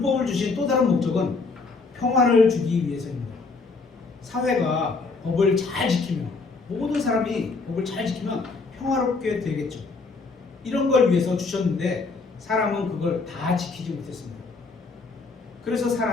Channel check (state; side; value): quieter; right; 4.1 dB